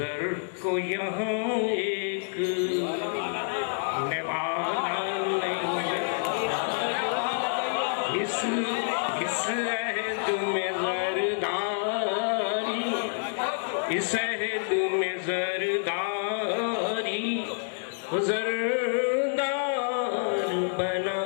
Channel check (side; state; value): right; silent; digital silence